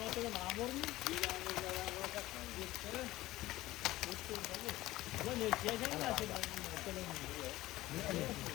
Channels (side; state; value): right; quieter; 16.9 dB